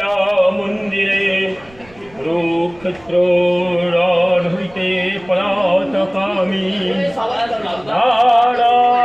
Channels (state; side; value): noise; right; rumble, 26 dB below the sound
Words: মন্দিরে রুক্ষেত্র রণ হইতে পলাতকামী